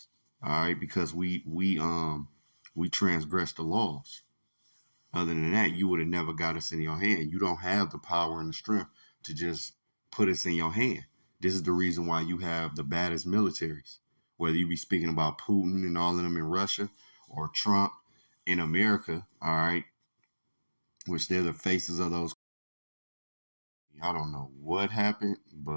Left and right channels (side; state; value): both; inverted; correlation -1.00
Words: All right, because we transgressed the laws. Other than that, you would have never got us in your hand. You don't have the power and the strength to just put us in your hand. This is the reason why you have the baddest militaries. Whether you be speaking about Putin and all of them in Russia or Trump in America, all right, which they're the faces of those. I don't know what happened,